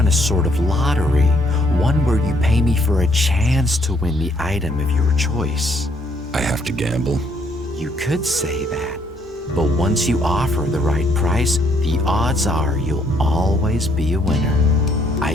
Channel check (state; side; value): normal; both; correlation 0.68